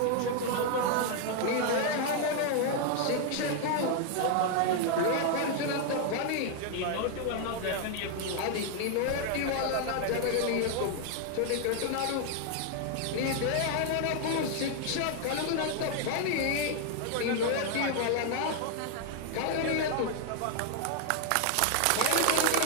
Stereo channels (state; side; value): different; both; correlation 0.00